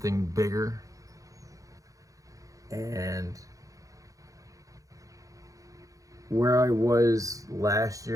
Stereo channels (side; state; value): left; late; 0.16 ms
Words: bigger. And where I was last